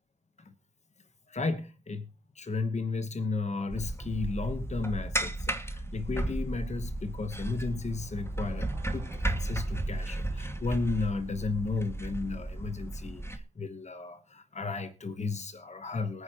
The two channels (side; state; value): both; normal; correlation 0.75